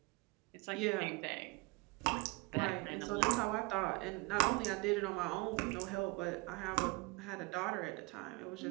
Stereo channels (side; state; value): left; quieter; 25.5 dB